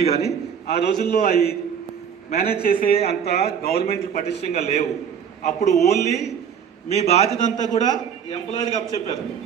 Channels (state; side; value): quieter; left; 7.7 dB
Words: కానీ ఆ రోజుల్లో అవి మేనేజ్ చేసే అంత గవర్నమెంట్ పటిష్టంగా లేవు. అప్పుడు ఓన్లీ మీ బాధ్యత అంతా కూడా ఎంప్లాయీకి అప్పచెప్పారు.